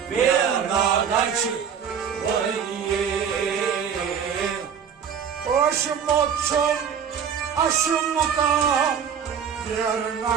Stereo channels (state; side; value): quieter; left; 7.5 dB